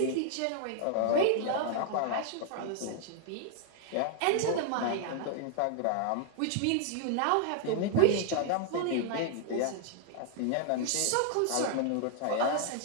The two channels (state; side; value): different; both; correlation 0.00